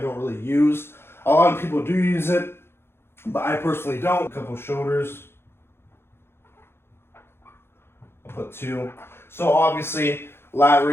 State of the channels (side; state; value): right; late; 0.11 ms